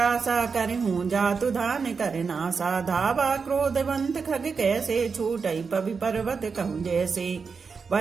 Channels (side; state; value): left; quieter; 5.3 dB